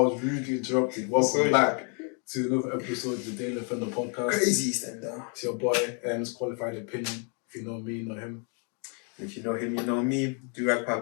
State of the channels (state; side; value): quieter; right; 39.2 dB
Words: was rudely interrupted, welcome back to another episode of the Daily from the podcast. Crazy stand-down. It's your boy, M's Qualified Opinion. If you know me, you know him. If you know him, you know me. Durag